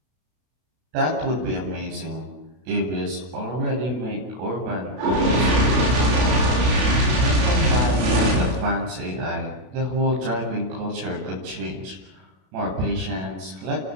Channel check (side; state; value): left; late; 32 ms